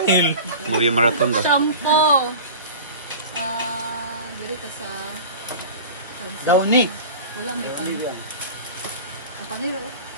Movie marathon ba? Shampoo. Dili ka sa sunset. Downy. Wala, may paniro. Ang paniro.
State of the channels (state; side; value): inverted; both; correlation -0.36